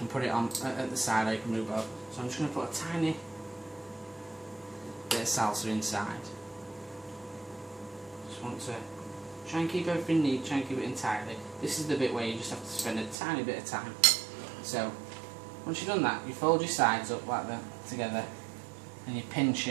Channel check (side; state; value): left; drops out; at 13.2 s